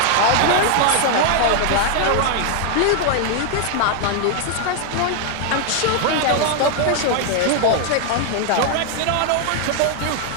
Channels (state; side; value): different; both; correlation 0.00